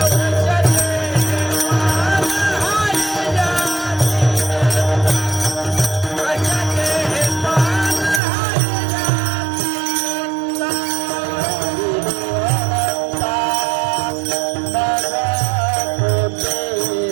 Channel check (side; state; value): left; drops out; at 8.2 s